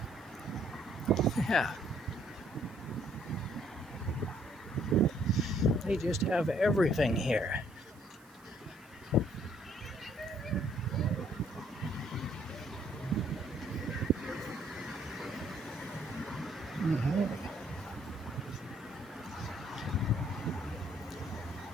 Yeah. They just have everything here. Mm-hmm.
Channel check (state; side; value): noise; right; hiss, 28 dB below the sound